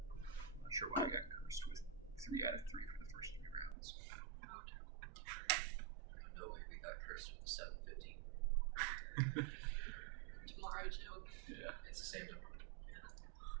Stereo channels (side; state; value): left; drops out; at 3.8 s